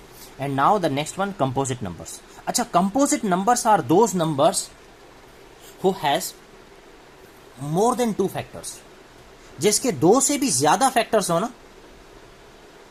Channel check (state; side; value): identical; both; correlation 1.00